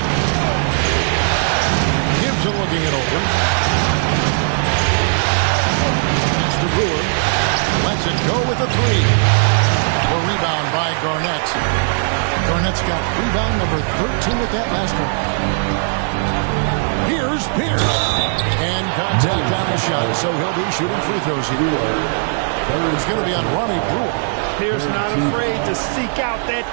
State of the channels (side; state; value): left; silent; 57 dB below the other